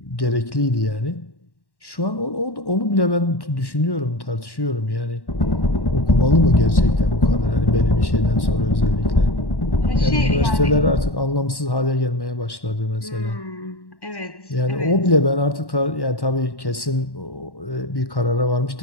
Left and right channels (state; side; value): late; right; 1.1 ms